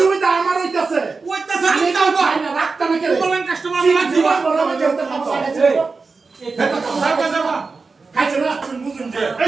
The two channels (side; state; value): left; quieter; 4.3 dB